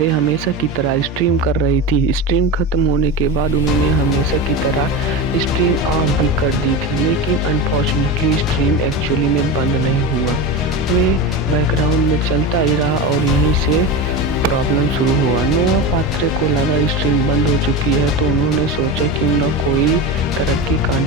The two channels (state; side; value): normal; both; correlation 0.23